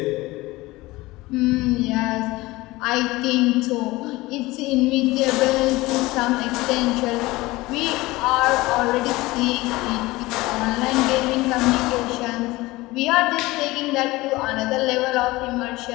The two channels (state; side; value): quieter; right; 20.1 dB